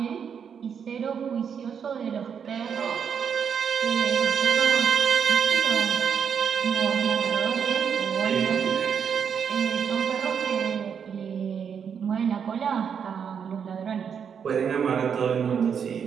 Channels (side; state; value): left; quieter; 7.3 dB